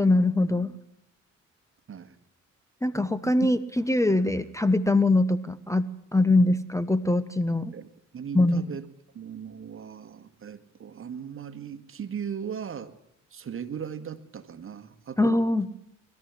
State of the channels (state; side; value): normal; both; correlation 0.86